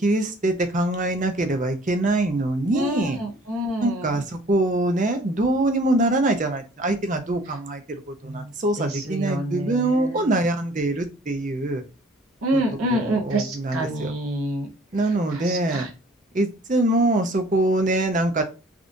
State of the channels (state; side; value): normal; both; correlation 0.53